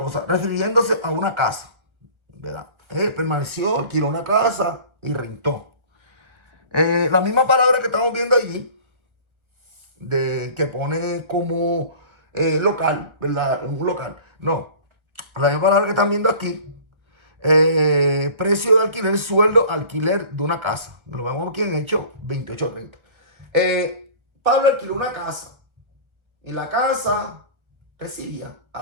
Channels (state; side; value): late; left; 1.7 ms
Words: refiriéndose a una casa, ¿verdad? Permaneció, alquiló una casa y rentó. La misma palabra que estamos viendo allí, de que pone como local, ¿verdad? Un local. No, la misma palabra que están viendo aquí, precio de alquiler, sueldo, alquiler de una casa. Lo vemos aquí en Hechos 28:30. Pablo alquiló una casa y la casa recibía a